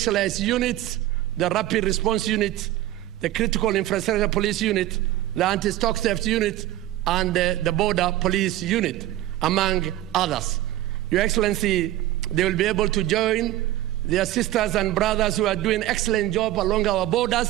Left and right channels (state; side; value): quieter; left; 14.7 dB